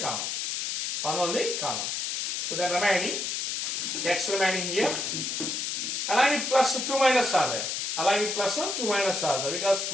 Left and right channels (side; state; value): left; noise; hiss, 1 dB below the sound